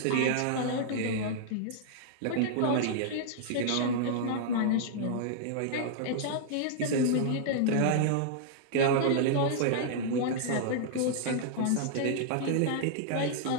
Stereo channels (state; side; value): different; both; correlation -0.01